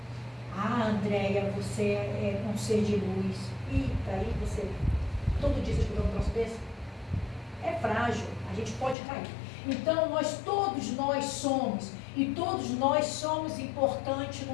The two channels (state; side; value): drops out; right; at 9.0 s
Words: Andréia, você é um ser de luz. Eita, aí você... Todo dia você escuta um troço desse? É frágil, a gente pode cair. Então, todos nós somos, e todos nós somos importantes